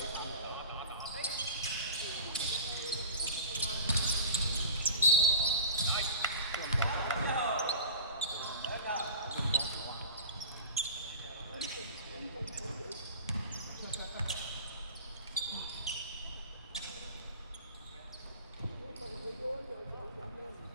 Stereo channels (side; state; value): both; inverted; correlation -0.37